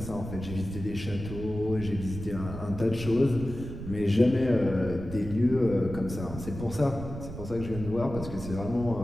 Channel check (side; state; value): right; noise; rumble, 9 dB below the sound